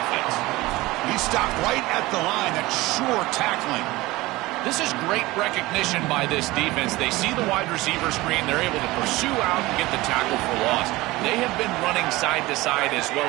He stopped right at the line. That's sure tackling. This is great recognition by this defense. They see the wide receiver screen. They're able to pursue out and get the tackle for loss. They have been running side to side as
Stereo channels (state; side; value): quieter; left; 19.7 dB